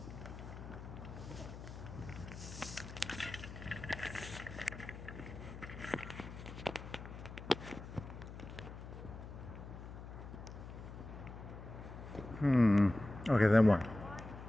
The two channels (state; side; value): noise; left; hum, 11 dB below the sound